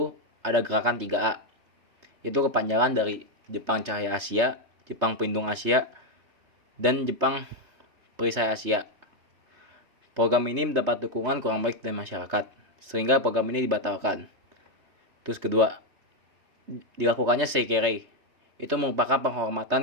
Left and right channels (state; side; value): late; left; 3.3 ms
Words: ada gerakan 3A. Itu kepanjangan dari Jepang Cahaya Asia, Jepang Pelindung Asia, dan Jepang Perisai Asia. Program ini mendapat dukungan kurang baik dari masyarakat, sehingga program ini dibatalkan. Terus kedua, dilakukannya Seikirei. Itu merupakan